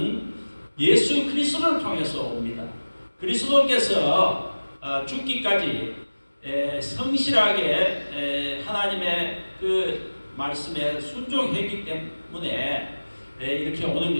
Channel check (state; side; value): inverted; both; correlation -1.00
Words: 예수 그리스도를 통해서 옵니다. 그리스도께서 죽기까지 성실하게 하나님의 그 말씀에 순종했기 때문에 이렇게 오는